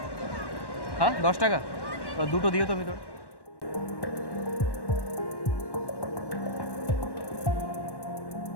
হ্যাঁ, 10 টাকা। দুটো দিও তো ভিতর।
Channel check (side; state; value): right; late; 1.1 ms